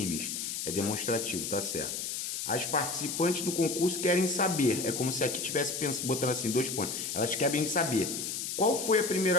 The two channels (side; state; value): left; noise; hiss, 3 dB below the sound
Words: é demonstrativo, tá certo? As participantes do concurso querem saber, é como se aqui tivesse botando assim 2 pontos. Elas querem saber qual foi a